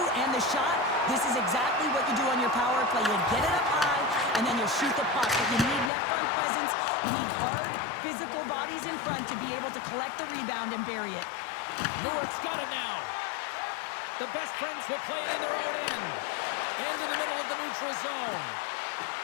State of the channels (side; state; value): right; drops out; at 5.9 s